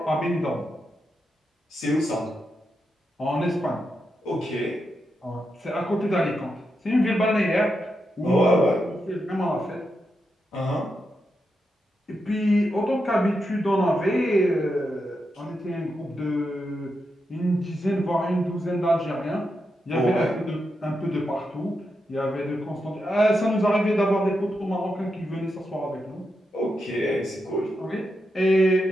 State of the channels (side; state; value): both; normal; correlation 0.86